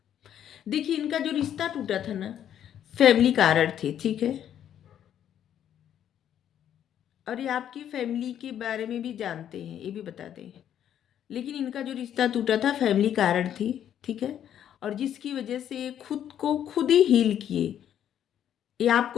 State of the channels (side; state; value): right; quieter; 10.1 dB